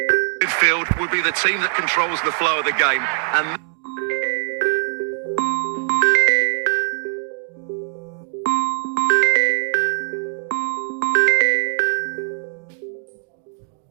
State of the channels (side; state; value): left; silent; digital silence